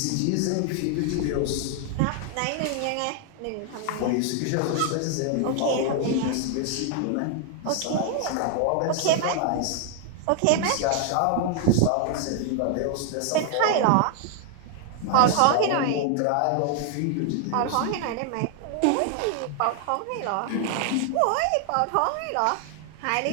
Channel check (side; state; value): both; different; correlation 0.00